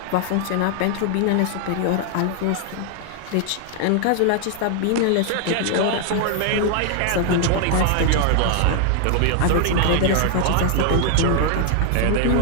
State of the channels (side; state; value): both; different; correlation 0.00